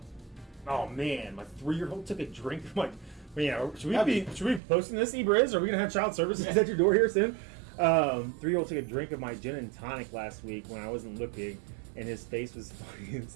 Oh man, my 3-year-old took a drink. I'm like, man, should we be posting this, Ebriz? Are we gonna have child services at your door here soon? 3-year-old took a drink of my gin and tonic last week when I wasn't looking, and his face was funny as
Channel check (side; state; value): left; drops out; at 4.6 s